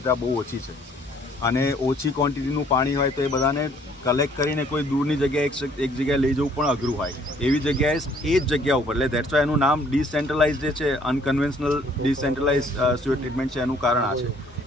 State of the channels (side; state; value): both; normal; correlation 0.61